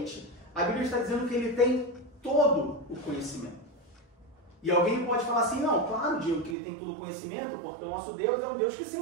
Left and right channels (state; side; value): drops out; left; at 6.6 s